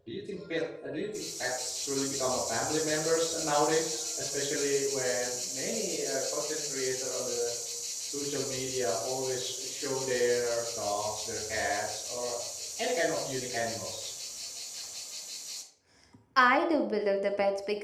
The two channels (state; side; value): identical; both; correlation 1.00